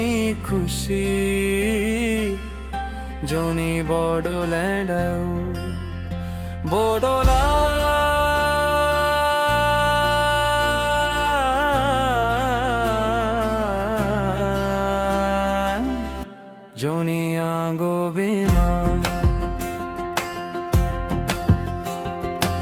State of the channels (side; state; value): both; identical; correlation 1.00